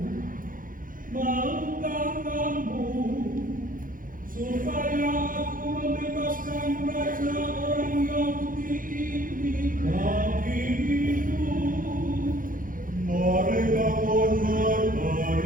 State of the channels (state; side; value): late; left; 0.40 ms